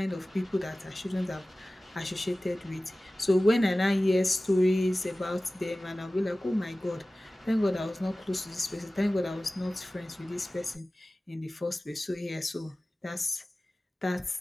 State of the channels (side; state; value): both; normal; correlation 0.97